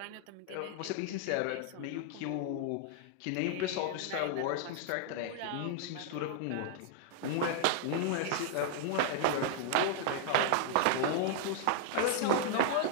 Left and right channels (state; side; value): different; both; correlation -0.01